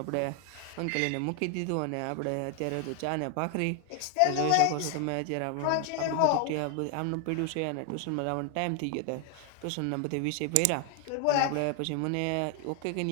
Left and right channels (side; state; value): both; different; correlation 0.00